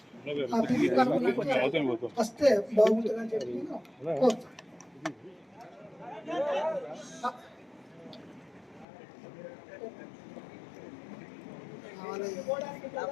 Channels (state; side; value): drops out; right; at 8.8 s